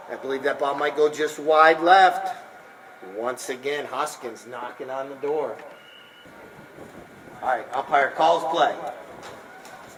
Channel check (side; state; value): both; identical; correlation 1.00